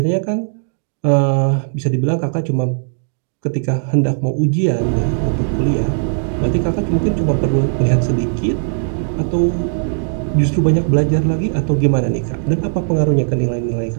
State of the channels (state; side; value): silent; left; 68 dB below the other